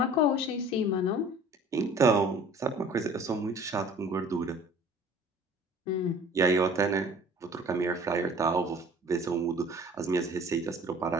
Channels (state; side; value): normal; both; correlation 0.48